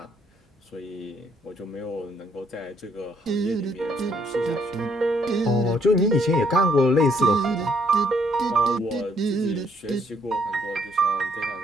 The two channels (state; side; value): normal; both; correlation 0.69